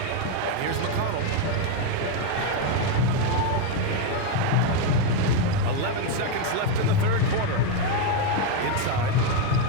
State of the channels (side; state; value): both; different; correlation 0.02